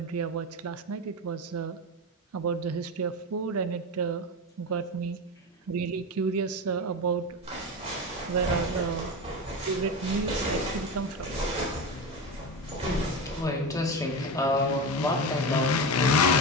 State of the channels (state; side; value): normal; both; correlation 0.21